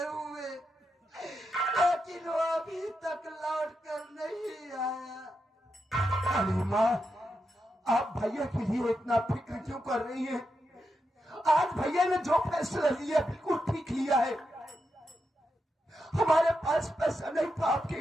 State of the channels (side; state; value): both; normal; correlation 0.86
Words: हुए, लेकिन वो अभी तक लौट कर नहीं आया। अरे माँ, आप भैया के लिए इतना फिक्र क्यों कर रही हैं? आज भैया ने जो फैसला लिया बिल्कुल ठीक लिया है। हमारे पास पैसा नहीं था आपके